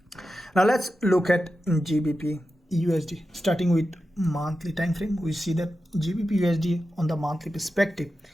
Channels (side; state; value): both; normal; correlation 0.91